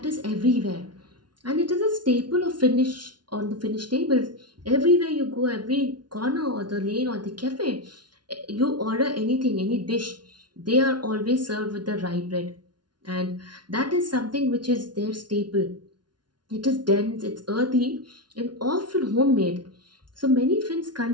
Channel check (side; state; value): left; late; 0.70 ms